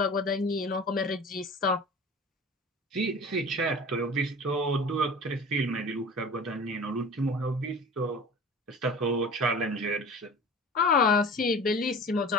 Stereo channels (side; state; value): both; normal; correlation 0.39